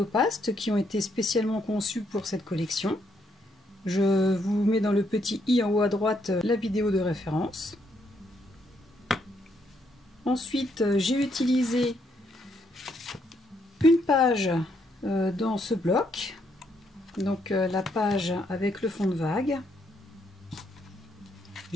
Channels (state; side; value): normal; both; correlation 0.74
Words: qui ont été spécialement conçus pour cette collection. Je vous mets dans le petit i en haut à droite la vidéo de référence. Ensuite, j'ai utilisé une page dans ce bloc, donc la page avec le fond de vague.